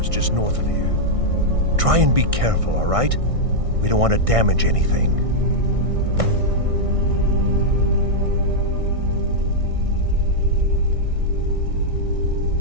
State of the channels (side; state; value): left; late; 1.6 ms